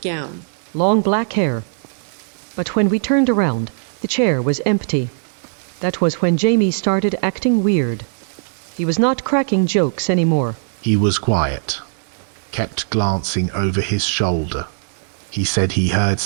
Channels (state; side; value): silent; left; digital silence